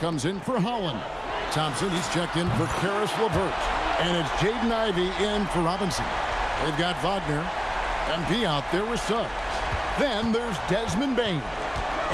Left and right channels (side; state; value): both; identical; correlation 1.00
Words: in for Holland. Thompson, he's checked in for Karis LeVert. And it's Jaden Ivey in for Robinson. They've got Wagner. MP out there with subs. Then there's Desmond Bain.